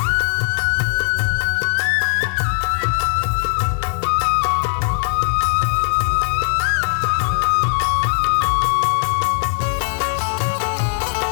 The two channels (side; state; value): right; silent; digital silence